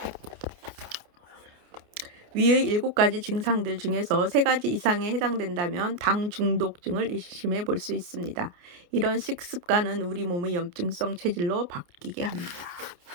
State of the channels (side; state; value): left; late; 28 ms